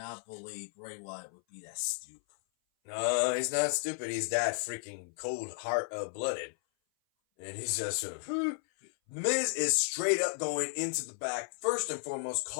believe Bray Wyatt would be that stupid. No, he's not stupid. He's that freaking blooded. And he's just sort of... Miz is straight up going into the back, first and foremost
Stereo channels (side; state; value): right; silent; 55 dB below the other